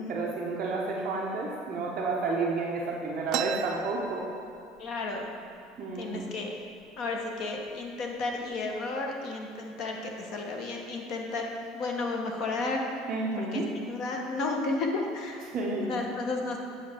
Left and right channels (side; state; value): both; normal; correlation 0.47